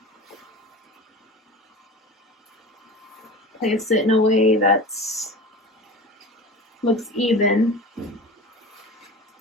Place it in a way that looks even.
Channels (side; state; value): both; normal; correlation 0.33